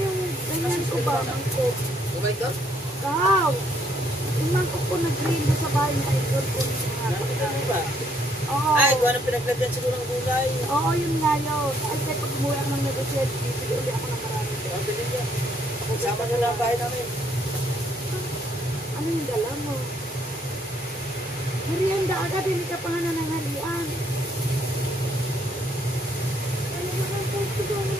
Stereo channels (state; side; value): normal; both; correlation 0.69